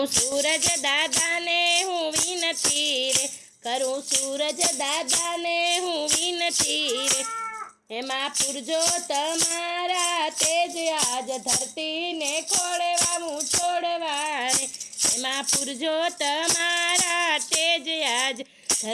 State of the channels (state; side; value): identical; both; correlation 1.00